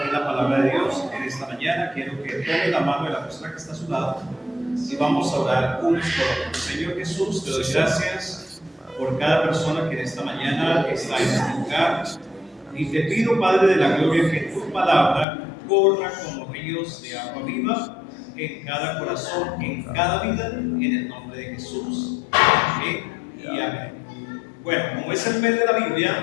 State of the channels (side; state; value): right; drops out; at 15.2 s